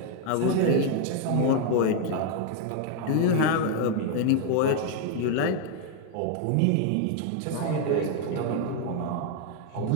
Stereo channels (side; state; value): both; different; correlation 0.01